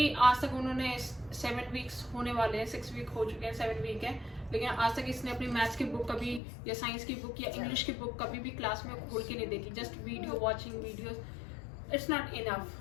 आज तक उन्होंने 7 वीक्स होने वाले हैं, 6 वीक हो चुके हैं, 7 वीक है, लेकिन आज तक इसने अपनी मैथ्स की बुक कभी या साइंस की बुक या इंग्लिश की बुक कभी भी क्लास में खोल के नहीं देखी। Just video watching videos, it's not enough.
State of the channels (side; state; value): right; drops out; at 6.4 s